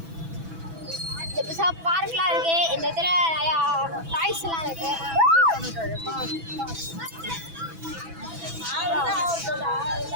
பார்க்லாம் இருக்கு. இந்த இடத்துல நிறையா டாய்ஸ் எல்லாம் இருக்கு.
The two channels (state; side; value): late; left; 6.1 ms